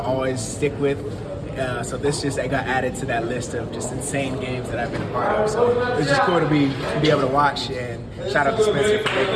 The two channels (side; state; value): both; identical; correlation 1.00